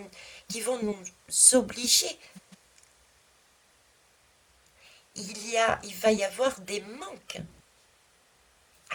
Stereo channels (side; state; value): both; identical; correlation 1.00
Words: vont nous obliger. Il va y avoir des manques.